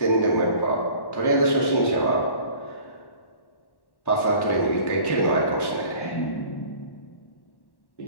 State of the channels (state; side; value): late; right; 1.1 ms